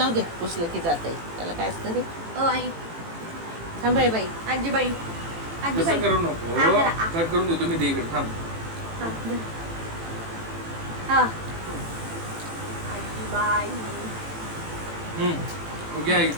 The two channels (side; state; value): left; late; 18 ms